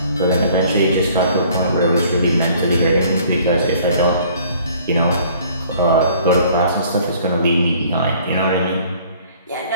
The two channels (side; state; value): both; inverted; correlation -0.56